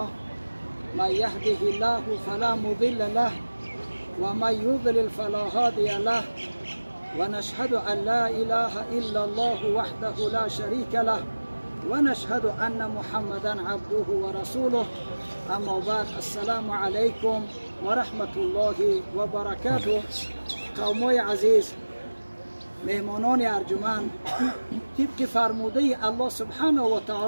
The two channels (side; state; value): both; inverted; correlation -1.00